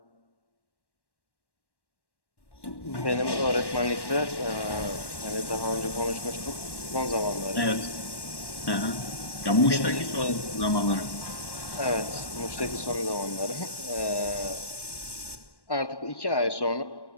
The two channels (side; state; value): right; late; 1.1 ms